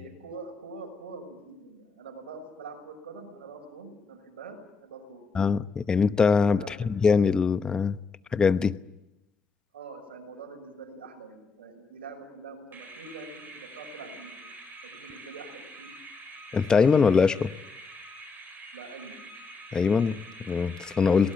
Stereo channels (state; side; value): quieter; right; 5.0 dB